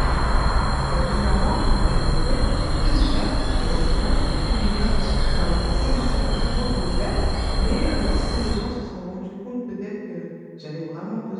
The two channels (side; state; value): both; identical; correlation 1.00